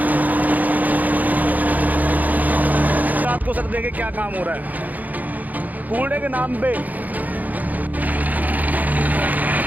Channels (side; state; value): left; late; 0.080 ms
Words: रात को सर देखिए क्या काम हो रहा है कूड़े के नाम पे।